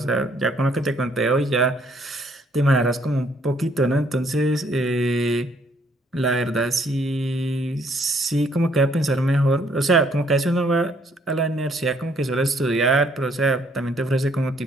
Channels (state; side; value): normal; both; correlation 0.66